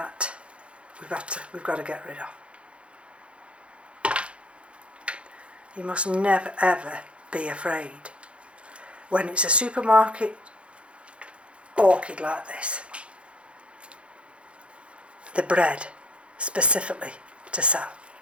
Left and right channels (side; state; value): left; late; 0.059 ms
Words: we've got to get rid of. You must never ever be afraid when it's a supermarket orchid like this. The bred specifically to sell.